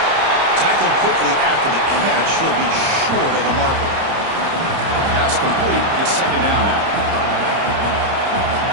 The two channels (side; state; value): left; late; 30 ms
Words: Tackled quickly after the catch. He'll be short of the marker. Pass complete. It's second down now.